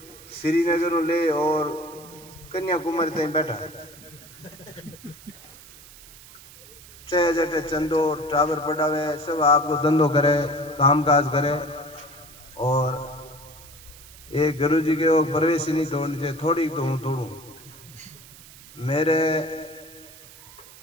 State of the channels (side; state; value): right; noise; hiss, 20 dB below the sound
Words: श्रीनगर ले और कन्याकुमारी तक बैठा है। चाहे जटे चंदो टावर पढ़ावे, सब आपको धंधो करे, काम काज करे। और एक गुरु जी के वो प्रवेश ही नहीं तोड़नी चाहिए, थोड़ी तो हूँ तोड़ू। मेरे